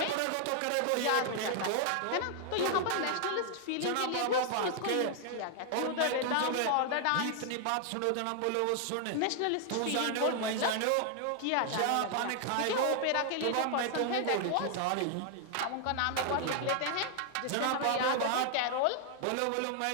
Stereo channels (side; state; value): both; different; correlation 0.00